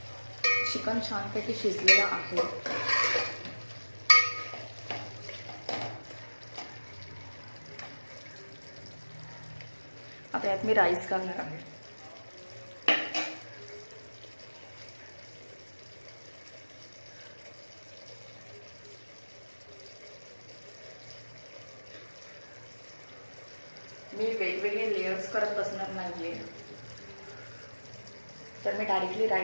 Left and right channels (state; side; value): inverted; both; correlation -1.00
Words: चिकन छानपैकी शिजलेलं आहे. आता यात मी राईस घालणार आहे. मी वेगवेगळे लेयर्स करत बसणार नाहीये, तर मी डायरेक्टली